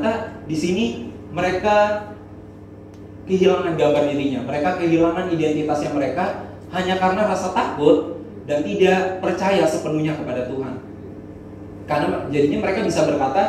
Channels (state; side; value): identical; both; correlation 1.00